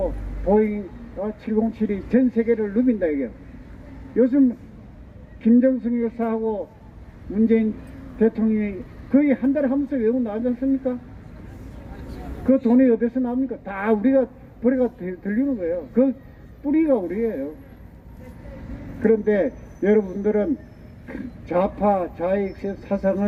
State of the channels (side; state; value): both; identical; correlation 1.00